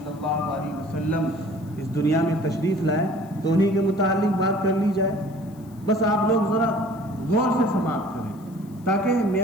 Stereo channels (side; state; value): left; noise; hiss, 28 dB below the sound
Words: اللہ علیہ وسلم اس دنیا میں تشریف لائے، تو انہیں کے متعلق بات کر لی جائے. بس آپ لوگ ذرا غور سے سماعت کریں تاکہ